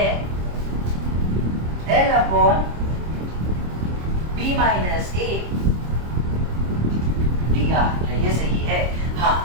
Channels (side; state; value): left; late; 26 ms